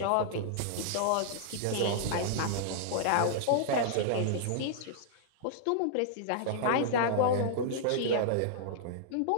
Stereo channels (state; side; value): different; both; correlation -0.01